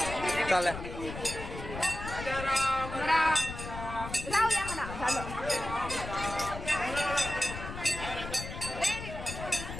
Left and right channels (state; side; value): noise; left; rumble, 9 dB below the sound